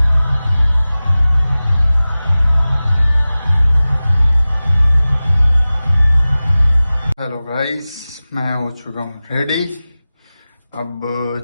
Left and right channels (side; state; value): both; inverted; correlation -0.97